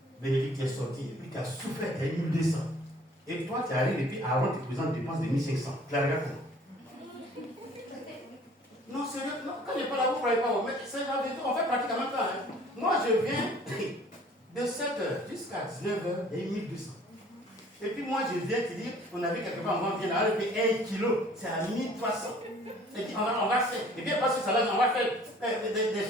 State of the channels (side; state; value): both; normal; correlation 0.53